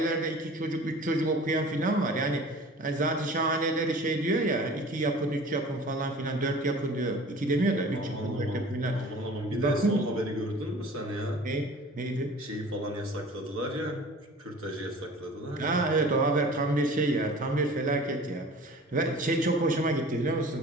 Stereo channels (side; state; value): both; normal; correlation 0.44